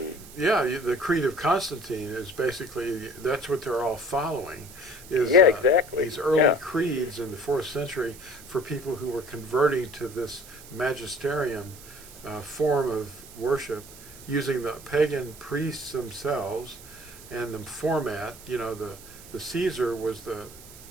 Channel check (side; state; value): right; noise; hiss, 18 dB below the sound